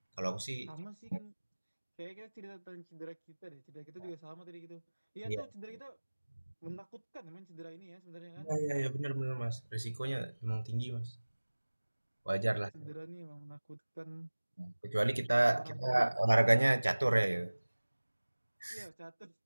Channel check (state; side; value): inverted; both; correlation -1.00